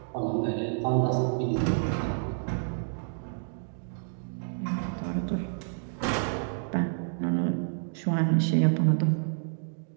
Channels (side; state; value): left; silent; digital silence